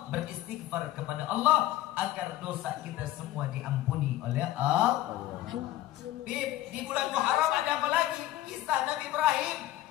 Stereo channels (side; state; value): right; quieter; 14.7 dB